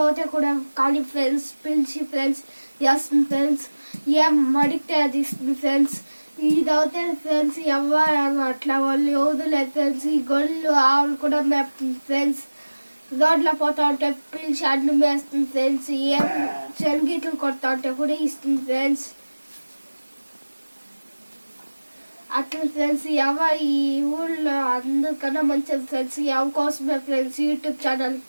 అయితే కూడా కానీ ఫ్రెండ్స్ పిలిచి ఫ్రెండ్స్ వేస్తుంది ఫ్రెండ్స్. ఏం అడిగితే అది ఇస్తుంది ఫ్రెండ్స్. ఇదైతే ఫ్రెండ్స్ ఎవరు అట్లా వాళ్ళు వదిలేదు ఫ్రెండ్స్. ఈ గొల్లు ఆవులు కూడా మేపుతుంది ఫ్రెండ్స్. రోడ్లో పోతా ఉంటే పిలిచి అన్నం వేస్తుంది ఫ్రెండ్స్. ఏం శనగీతలు కొడతా ఉంటే కూడా ఇస్తుంది ఫ్రెండ్స్. అట్లా ఫ్రెండ్స్ ఈ ఊళ్ళో అందరికన్నా మంచిది ఫ్రెండ్స్. ఎవ కోసమే ఫ్రెండ్స్ యూట్యూబ్ ఛానల్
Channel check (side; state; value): both; inverted; correlation -1.00